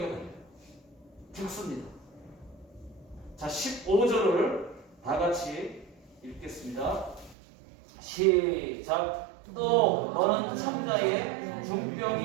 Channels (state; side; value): drops out; left; at 7.4 s